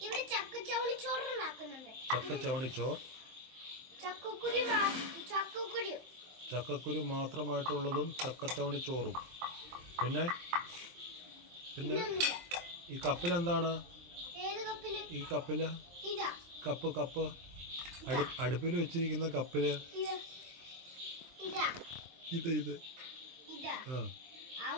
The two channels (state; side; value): late; left; 23 ms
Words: ചക്കച്ചവണിച്ചോർ, ചക്കക്കുരു മാത്രമായിട്ടുള്ളതും ചക്കച്ചവണിച്ചോറും. പിന്നെ പിന്നെ ഈ കപ്പിലെന്താണ്? ഈ കപ്പില് കപ്പ് അടുപ്പിൽ വെച്ചിരിക്കുന്ന കപ്പില് ഇത്